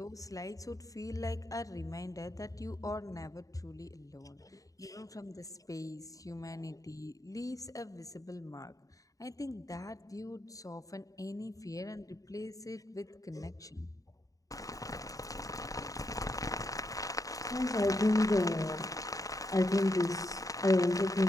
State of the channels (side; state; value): right; late; 0.17 ms